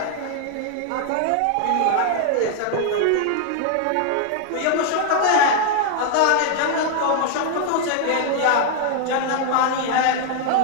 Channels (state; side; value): different; both; correlation 0.00